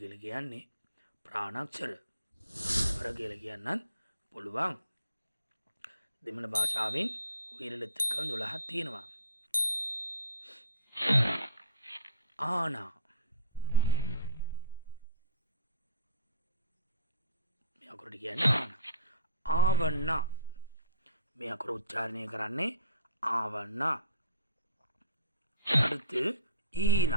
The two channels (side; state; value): both; inverted; correlation -0.43